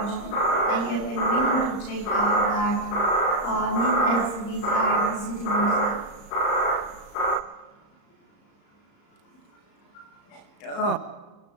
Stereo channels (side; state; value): right; late; 35 ms